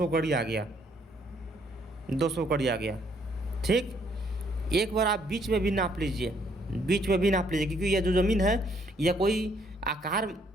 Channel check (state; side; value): normal; both; correlation 0.68